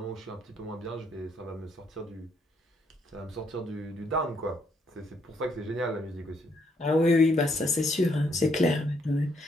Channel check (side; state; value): both; normal; correlation 0.72